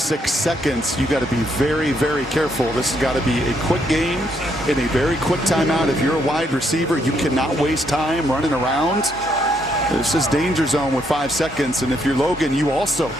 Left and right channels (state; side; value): normal; both; correlation 0.74